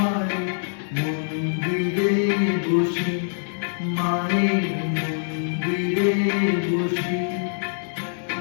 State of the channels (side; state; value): right; silent; 63 dB below the other